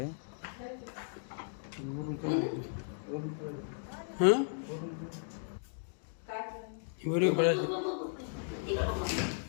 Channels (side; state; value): right; silent; digital silence